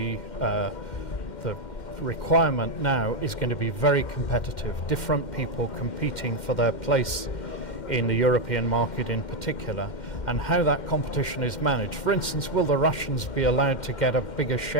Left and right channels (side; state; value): right; late; 2.1 ms